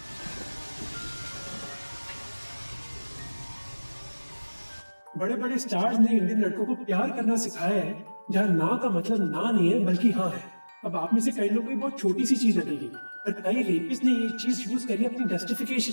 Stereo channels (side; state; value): both; inverted; correlation -1.00